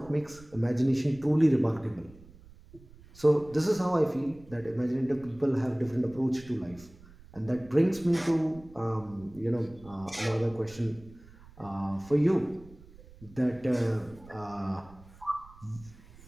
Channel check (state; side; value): noise; right; rumble, 22 dB below the sound